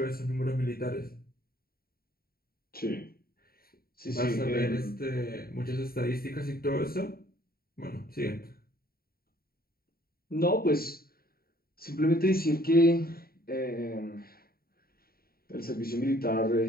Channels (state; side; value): late; right; 0.43 ms